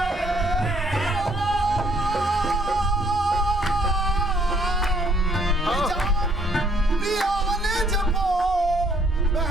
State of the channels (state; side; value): normal; both; correlation 0.64